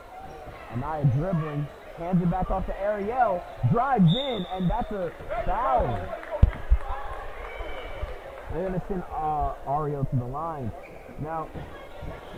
Anaya dribbling, hands it back off to Ariel, drives in, and that's a foul. They're going to send Ariel to the line. Now,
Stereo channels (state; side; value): identical; both; correlation 1.00